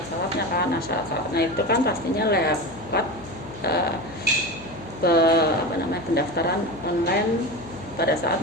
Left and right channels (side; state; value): left; noise; hum, 17 dB below the sound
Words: kan. Nah, syarat-syaratnya itu kan pastinya lewat pendaftaran online pada saat